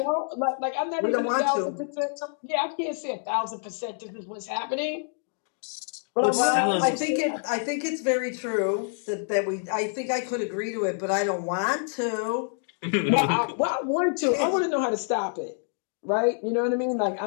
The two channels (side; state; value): right; silent; 56 dB below the other